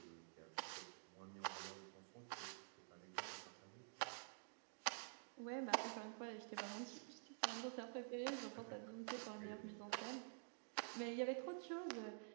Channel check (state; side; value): silent; left; digital silence